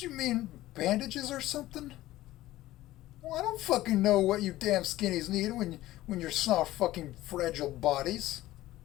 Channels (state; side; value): quieter; right; 16.0 dB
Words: you mean bandages or something? Well, I don't fucking know what you damn skinnies need when you're soft fucking fragile bodies.